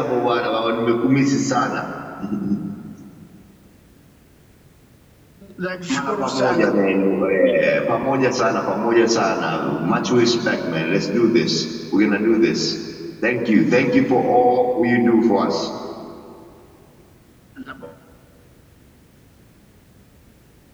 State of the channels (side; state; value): both; identical; correlation 1.00